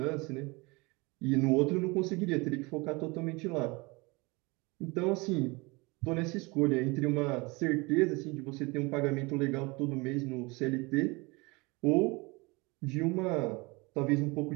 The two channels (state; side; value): quieter; left; 25.8 dB